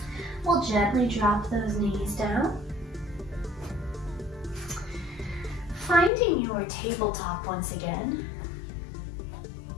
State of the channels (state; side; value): drops out; right; at 6.1 s